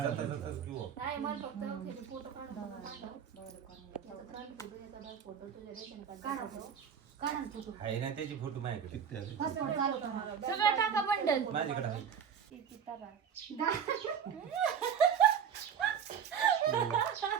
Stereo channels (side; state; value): left; quieter; 7.7 dB